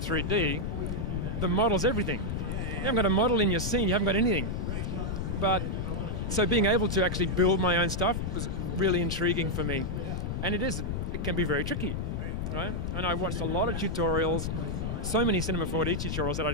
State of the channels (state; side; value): noise; left; rumble, 2 dB below the sound